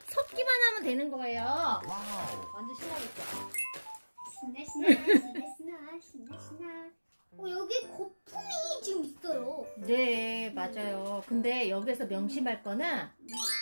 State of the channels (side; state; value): both; inverted; correlation -1.00